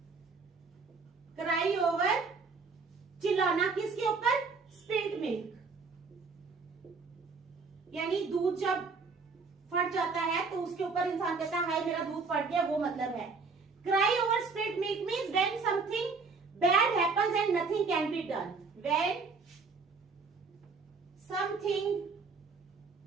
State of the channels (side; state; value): left; quieter; 4.5 dB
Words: क्राई ओवर, चिल्लाना किसके ऊपर? स्पिल्ट मिल्क, यानी दूध जब फट जाता है तो उसके ऊपर इंसान कहता है हाय मेरा दूध फट गया, वो मतलब है। Cry over spilled milk means when something bad happens and nothing can be done. When something